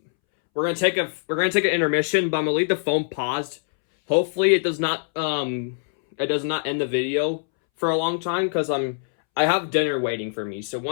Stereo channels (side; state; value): right; silent; 63 dB below the other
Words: we're gonna take an intermission, but I'm gonna leave the phone paused. Hopefully, it does not end the video for a long time because I have dinner waiting for me. So